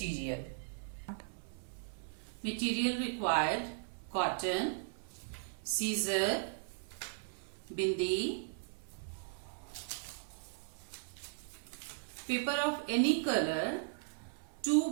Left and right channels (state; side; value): silent; left; 53 dB below the other